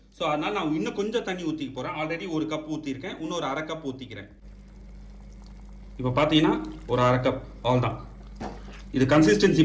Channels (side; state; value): both; identical; correlation 1.00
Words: ஸோ அதனால் நான் இன்னும் கொஞ்சம் தண்ணி ஊற்றிக்க போகிறேன். ஆல்ரெடி 1 கப் ஊற்றிருக்கேன். இன்னொரு 1/2 கப் ஊற்றிக்கிறேன். இப்போ பார்த்தீங்கன்னா ஒரு 1/2 கப் அவ்வளோதான். இது கன்சிஸ்டன்சி